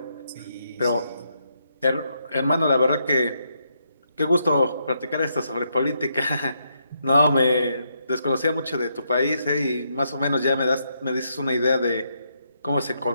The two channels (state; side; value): inverted; both; correlation -0.78